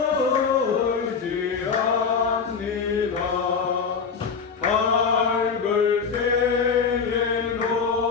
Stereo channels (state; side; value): quieter; right; 5.7 dB